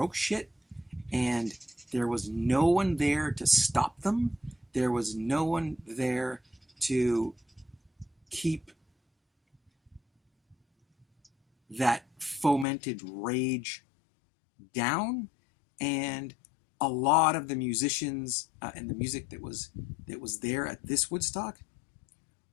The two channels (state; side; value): drops out; right; at 12.7 s